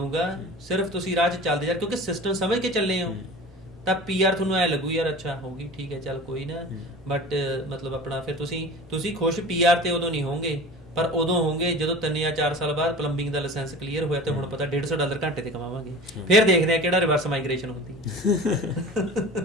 ਸਿਰਫ ਤੁਸੀਂ ਰਾਹ 'ਚ ਚੱਲਦੇ ਜਾ, ਕਿਉਂਕਿ ਸਿਸਟਮ ਸਮਝ ਕੇ ਚੱਲੇ ਹੋ, ਤਾਂ ਪੀਆਰ ਤੁਹਾਨੂੰ ਐ ਲੱਗੂ ਯਾਰ ਅੱਛਾ ਹੋਊਗੀ, ਠੀਕ ਹੈ, ਚੱਲ ਕੋਈ ਨਾ। ਬਟ ਮਤਲਬ ਆਪਣਾ ਫਿਰ ਤੁਸੀਂ ਖੁਸ਼ ਪੀਆਰ ਤੇ ਉਦੋਂ ਨਹੀਂ ਹੋਵੋਗੇ, ਪਰ ਉਦੋਂ ਹੋਵੋਗੇ ਜਦੋਂ 3 ਜਾਂ 4 ਸਾਲ ਬਾਅਦ ਪਲੰਬਿੰਗ ਦਾ ਲਾਇਸੈਂਸ ਕਲੀਅਰ ਹੋਇਆ ਤੇ ਹੁਣ ਪਤਾ $150 ਘੰਟੇ ਤੇ ਕਮਾਵਾਂਗੇ। ਫਿਰ ਦੇਖਦੇ ਆ ਕਿਹੜਾ ਰਿਵਰਸ ਮਾਈਗ੍ਰੇਸ਼ਨ ਹੁੰਦੀ।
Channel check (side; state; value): both; normal; correlation 0.37